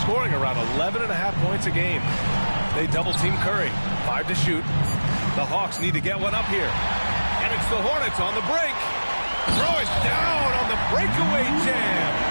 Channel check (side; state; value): both; inverted; correlation -1.00